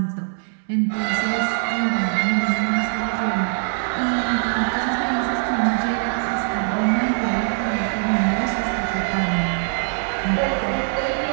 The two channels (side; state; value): left; silent; 62 dB below the other